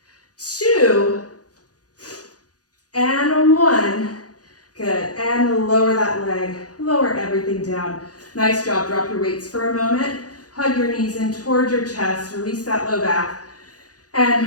2, and 1. Good. And lower that leg. Lower everything down. Nice job. Drop your weights for a moment. Hug your knees in towards your chest. Release that low back.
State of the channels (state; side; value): late; right; 0.68 ms